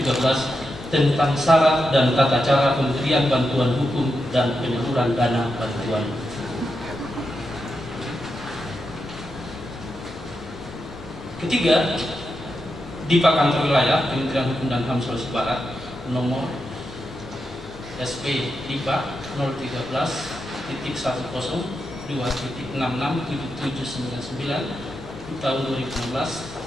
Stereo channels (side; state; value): both; normal; correlation 0.86